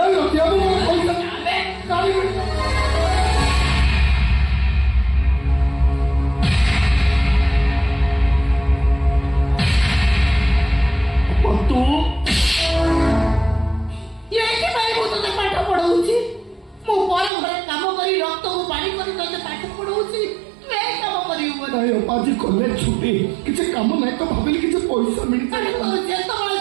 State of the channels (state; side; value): drops out; left; at 17.3 s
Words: ରଖିବା ମୋ ପଇସା अबे କାଢି ତୁ तोते पाठ पढ़ाऊँ मु पर घरे काम करी रक्त को पानी करी तोते पाठ पढ़ाऊँ तू ए काम करियो ନାଇଁ ଆଜି କଲେଜ ଛୁଟି କିଛି କାମ ନାହିଁ ତ ଭାବିଲି କିଛି ପଇସା ମିଳିଥାଏ ଯେତେବେଳେ